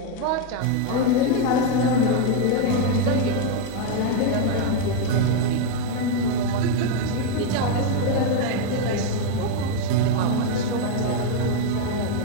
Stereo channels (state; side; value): different; both; correlation 0.01